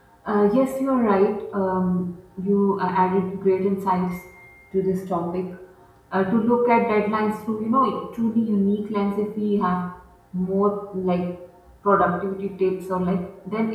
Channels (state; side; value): identical; both; correlation 1.00